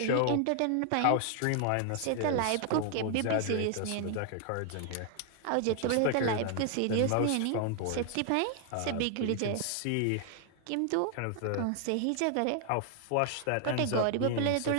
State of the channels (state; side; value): different; both; correlation 0.00